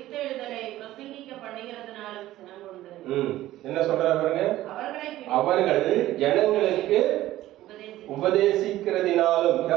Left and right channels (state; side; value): quieter; left; 15.0 dB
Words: பிரசங்கிக்க பண்ணுகிறதுனாலும் சினங்கொண்டு. என்ன சொல்றாரு பாருங்க? அவர்கள் ஜனங்களுக்கு உபதேசிக்கிறதினாலும்.